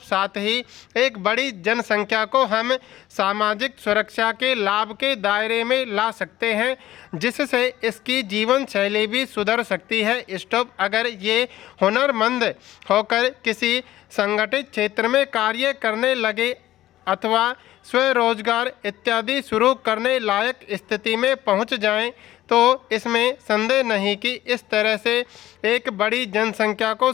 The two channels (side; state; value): right; quieter; 14.5 dB